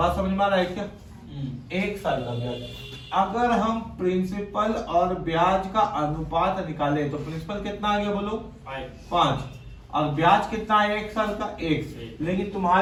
समझ में आ रहा है क्या? 1 साल का ब्याज। अगर हम प्रिंसिपल और ब्याज का अनुपात निकाले तो प्रिंसिपल कितना आ गया? बोलो 5, और ब्याज कितना है 1 साल का? 1। लेकिन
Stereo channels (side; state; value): both; identical; correlation 1.00